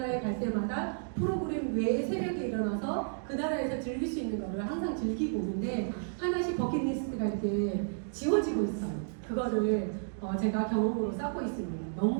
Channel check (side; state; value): left; silent; digital silence